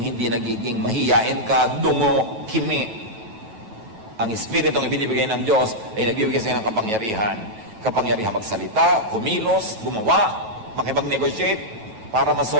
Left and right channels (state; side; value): late; left; 9.2 ms